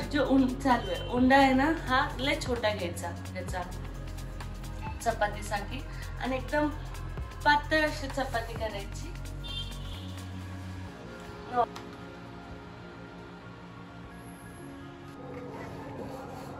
जो चालू आहे उंडा आहे ना, हा लय छोटा घ्यायचा त्याचा चपातीसाठी आणि एकदम पातळ अशी चपाती करायची.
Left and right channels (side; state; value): both; identical; correlation 1.00